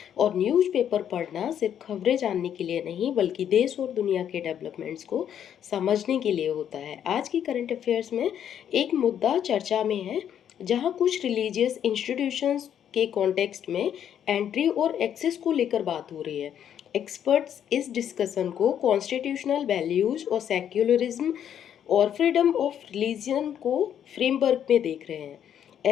और न्यूज़पेपर पढ़ना सिर्फ खबरें जानने के लिए नहीं बल्कि देश और दुनिया के डेवलपमेंट्स को समझने के लिए होता है। आज की करंट अफेयर्स में एक मुद्दा चर्चा में है, जहाँ कुछ रिलीजियस इंस्टीट्यूशंस के कॉन्टेक्स्ट में एंट्री और एक्सेस को लेकर बात हो रही है। एक्सपर्ट्स इस डिस्कशन को कॉन्स्टिट्यूशनल वैल्यूज और सेक्युलरिज्म और फ्रीडम ऑफ रिलीजन को फ्रेमवर्क में देख रहे हैं।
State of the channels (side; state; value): right; quieter; 9.4 dB